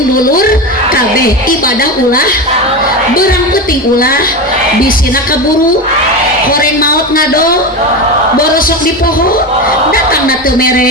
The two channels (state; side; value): normal; both; correlation 0.20